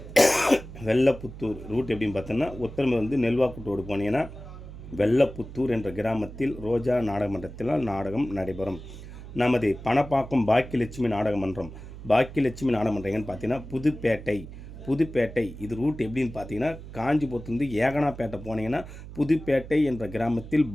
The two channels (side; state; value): right; noise; hum, 13 dB below the sound